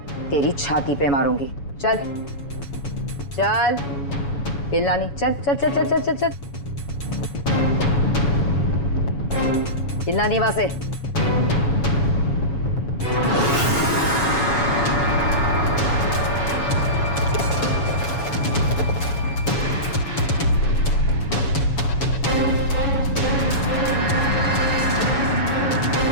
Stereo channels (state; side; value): late; right; 7.1 ms